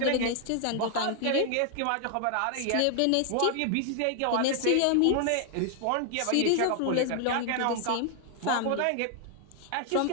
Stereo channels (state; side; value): different; both; correlation 0.00